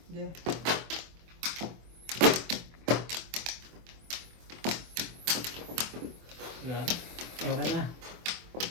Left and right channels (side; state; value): left; late; 24 ms